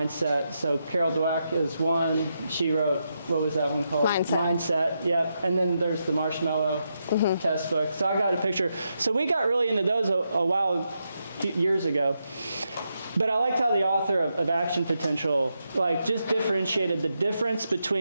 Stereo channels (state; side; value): inverted; both; correlation -0.84